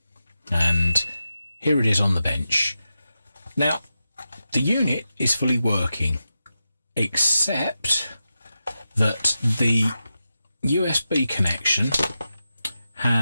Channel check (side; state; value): both; inverted; correlation -0.90